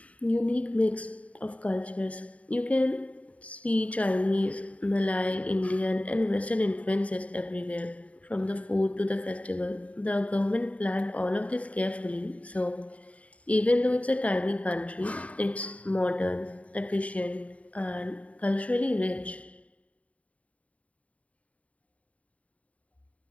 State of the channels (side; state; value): right; late; 0.067 ms